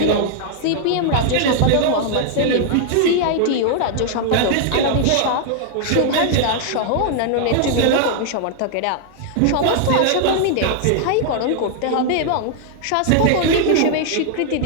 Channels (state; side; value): different; both; correlation 0.00